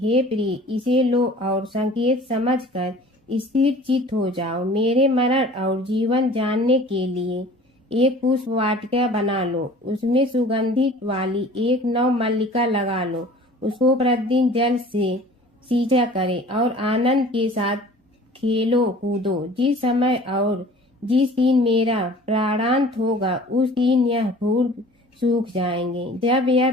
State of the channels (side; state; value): both; normal; correlation 0.46